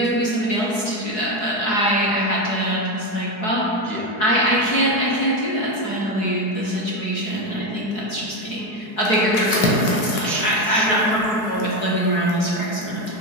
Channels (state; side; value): late; right; 4.7 ms